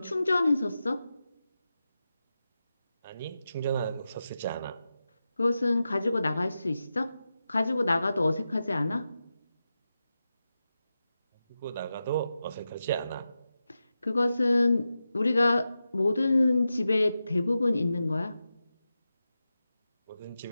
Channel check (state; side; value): inverted; both; correlation -0.91